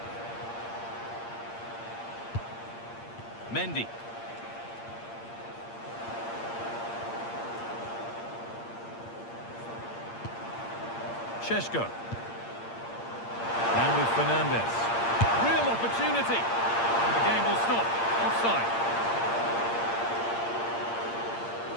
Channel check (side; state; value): right; late; 8.7 ms